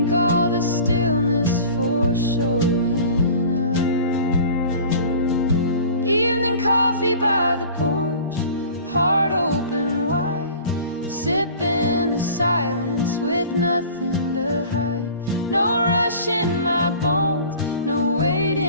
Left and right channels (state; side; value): inverted; both; correlation -0.43